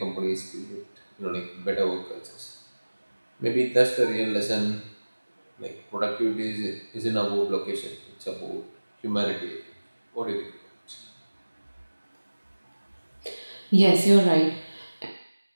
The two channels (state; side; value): inverted; both; correlation -1.00